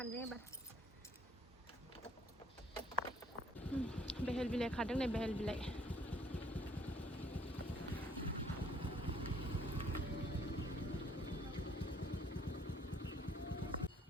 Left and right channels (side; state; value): both; normal; correlation 0.62